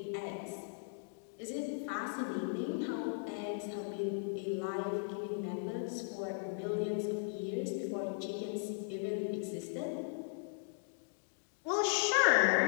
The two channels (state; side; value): silent; right; digital silence